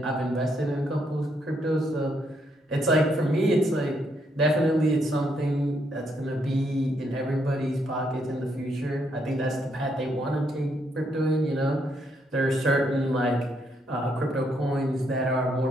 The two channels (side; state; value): both; normal; correlation 0.75